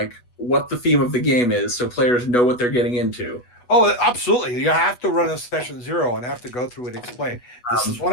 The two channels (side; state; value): right; late; 8.2 ms